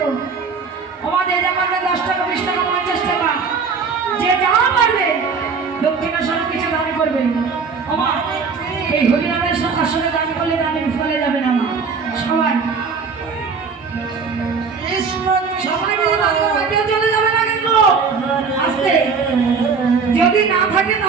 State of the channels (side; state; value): left; quieter; 5.3 dB